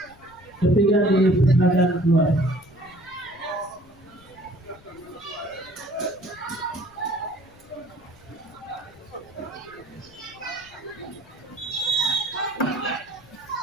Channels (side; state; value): left; noise; rumble, 25 dB below the sound